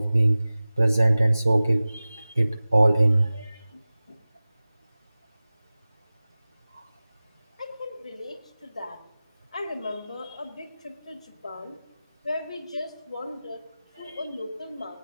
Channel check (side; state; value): both; inverted; correlation -0.97